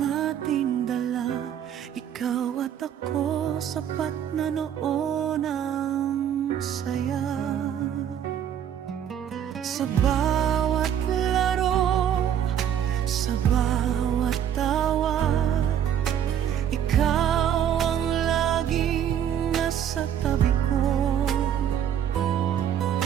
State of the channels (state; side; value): quieter; left; 9.6 dB